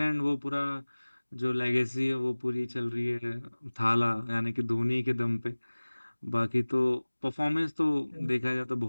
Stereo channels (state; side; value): inverted; both; correlation -1.00